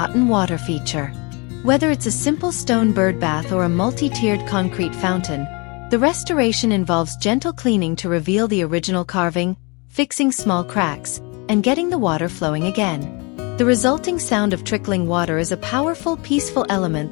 water feature. Whether it's a simple stone bird bath or a multi-tiered concrete fountain, the restoration involves gentle cleaning to reveal the original carving, fixing small cracks, and getting the water flowing again. The resulting sound of trickling water is a powerful, peaceful element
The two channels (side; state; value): right; quieter; 29.8 dB